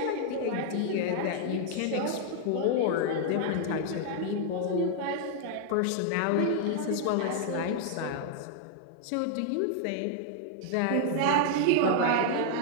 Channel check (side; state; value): both; different; correlation 0.00